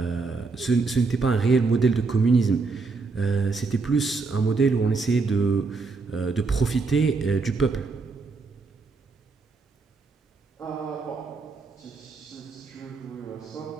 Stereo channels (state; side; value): quieter; left; 4.2 dB